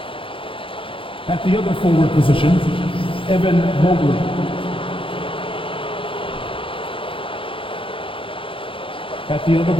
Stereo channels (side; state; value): right; late; 0.25 ms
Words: At the other forward position, Evan Mobley. At the other